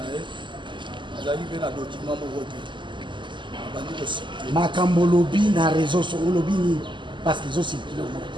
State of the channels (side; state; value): left; late; 0.23 ms